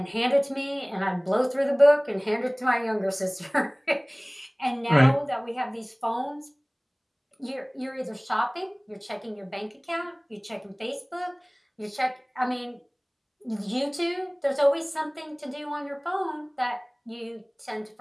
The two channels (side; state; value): both; identical; correlation 1.00